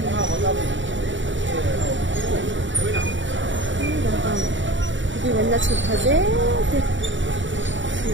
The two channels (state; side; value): late; left; 0.55 ms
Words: đi lên là chụp thật dễ